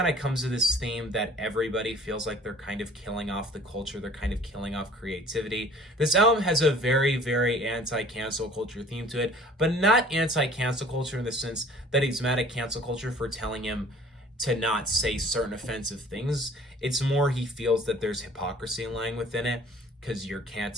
of comes to this theme that everybody feels like they're kind of killing off the culture. They're kind of killing off creativity. This album has a very, very anti-cancel culture theme to it, but not anti-cancel culture in the sense that he's mad at cancel culture for telling him to not say certain offensive things. It's more he feels that there's hypocrisy lying within it because you're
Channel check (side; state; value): both; normal; correlation 0.51